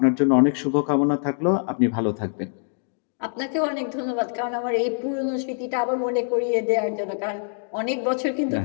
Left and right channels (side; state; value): right; silent; digital silence